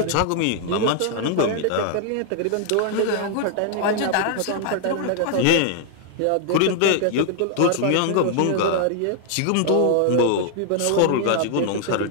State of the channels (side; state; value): both; different; correlation -0.01